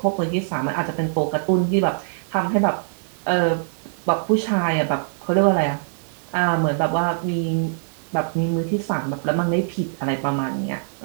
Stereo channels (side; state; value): left; silent; 56 dB below the other